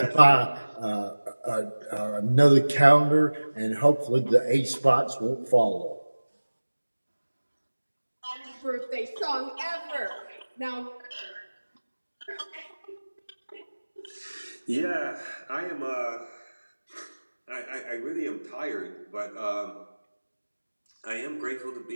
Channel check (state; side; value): inverted; both; correlation -1.00